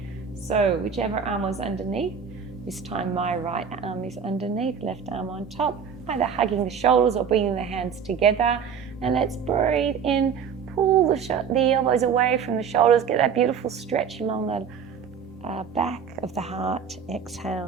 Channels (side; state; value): left; quieter; 7.0 dB